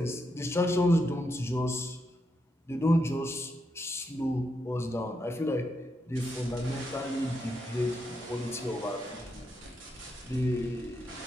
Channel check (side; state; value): both; normal; correlation 0.82